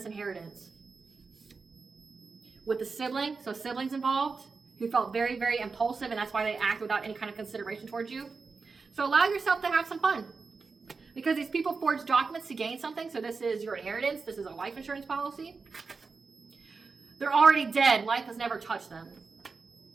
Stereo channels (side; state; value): left; quieter; 4.6 dB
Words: inheritance. With the sibling, so siblings involved, who felt very, very impulsive, and that's why they act without any kind of consideration towards you. So allow yourself to have some fun. Because these people forged documents to gain something. So this is your inheritance. This is a life insurance policy. They're already dead. Life has never touched them.